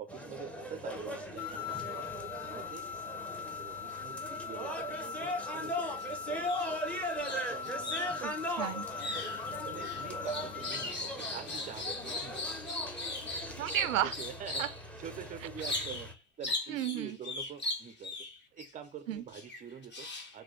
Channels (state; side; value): normal; both; correlation 0.19